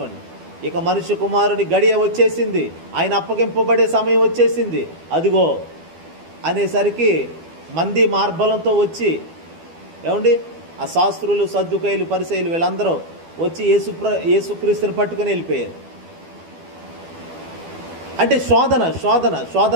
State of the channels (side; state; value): left; late; 12 ms